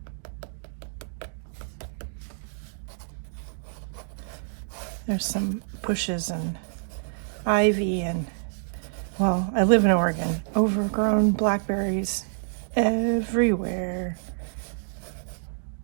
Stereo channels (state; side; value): silent; left; digital silence